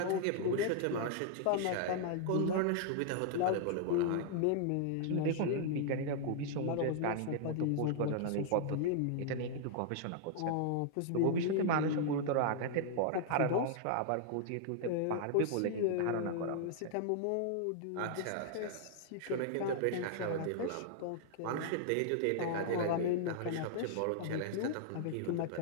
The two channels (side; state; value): both; different; correlation -0.01